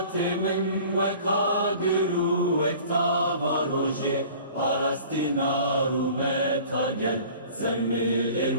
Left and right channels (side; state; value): both; inverted; correlation -0.46